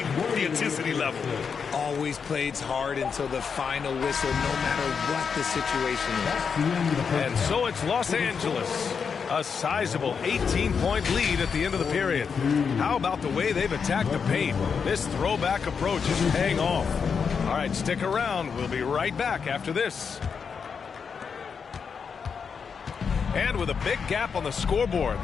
the intensity level. Always plays hard until the final whistle, no matter what the situation is. And so it's Los Angeles. A sizable 18-point lead at the end of the period. How about the way they've attacked the paint? This throwback approach is paying off. All right, stick around. We'll be right back after this. And with a big gap on the scoreboard,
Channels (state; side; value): quieter; right; 6.1 dB